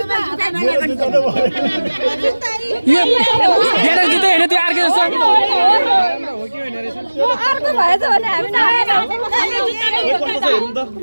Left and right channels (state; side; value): inverted; both; correlation -1.00